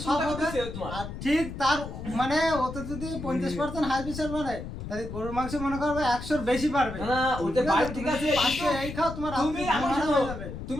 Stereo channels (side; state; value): left; noise; rumble, 9 dB below the sound